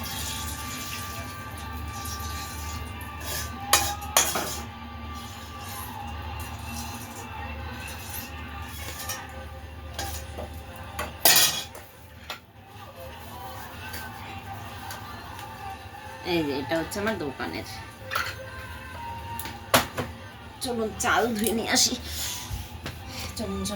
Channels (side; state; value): both; identical; correlation 1.00